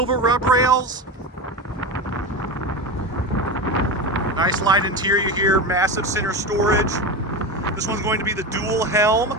rub rails, nice light interior here, massive center storage. This one's going to be the dual helm,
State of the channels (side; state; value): both; normal; correlation 0.22